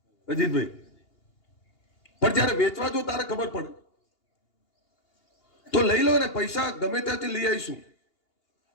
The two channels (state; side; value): late; right; 2.8 ms